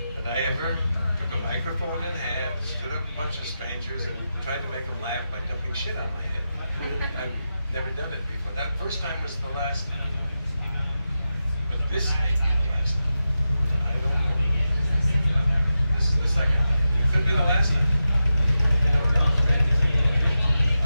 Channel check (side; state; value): both; inverted; correlation -0.90